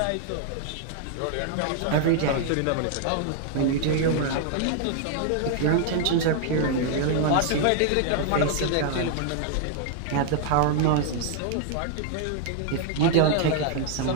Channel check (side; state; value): both; different; correlation 0.00